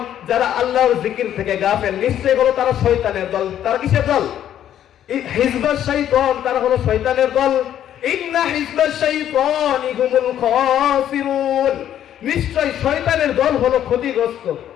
যারা আল্লাহর জিকির থেকে গাফেল, নিশ্চয়ই হলো তারা শয়তানের দল। তারা কিসের দল? হিজবাশ শাইতান, তারা হলো শয়তানের দল। ইন্না হিজবাশ শাইতানি হুমুল খাসিরুন, নিশ্চয়ই শয়তানের দল হলো ক্ষতিগ্রস্ত।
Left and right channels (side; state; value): right; quieter; 10.8 dB